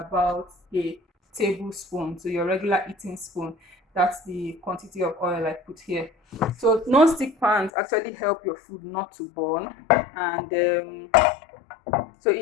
a tablespoon, so your regular eating spoon. That's the quantity of oil I put here. So non-stick pans actually help your food not to burn, and so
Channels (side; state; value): right; drops out; at 7.7 s